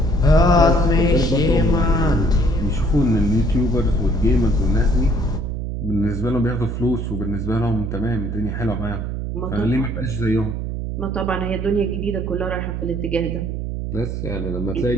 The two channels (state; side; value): noise; right; hum, 4 dB below the sound